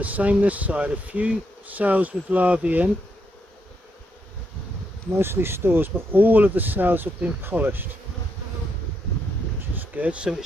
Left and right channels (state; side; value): normal; both; correlation 0.79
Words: same this side. A few cells with larvae in, mostly stores, but all of the cells have been polished, which is good. So it